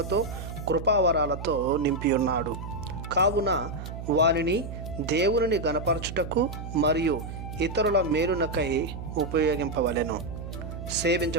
కృపావరాలతో నింపి ఉన్నాడు. కావున వారిని దేవుని గణపరచుటకు మరియు ఇతరుల మేలునకై ఉపయోగింపవలెను.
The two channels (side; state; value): right; noise; hum, 9 dB below the sound